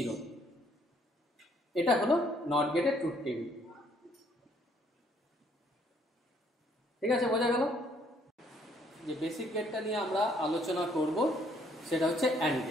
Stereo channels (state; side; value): normal; both; correlation 0.66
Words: এটা হলো নট গেটের ট্রুথ টেবিল। ঠিক আছে, বোঝা গেল? যে বেসিক গেটটা নিয়ে আমরা আলোচনা করব সেটা হচ্ছে অ্যান্ড